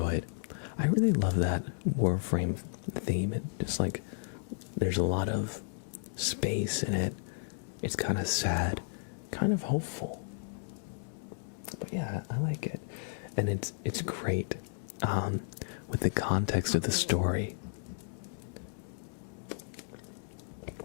I really love that Warframe theme. It just like, there's a lot of space in it. It's kind of sad, kind of hopeful. But yeah, I like it. And it's great with the context of the story.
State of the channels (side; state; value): right; silent; digital silence